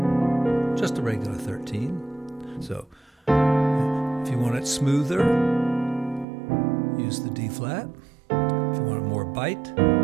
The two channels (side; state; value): left; drops out; at 6.2 s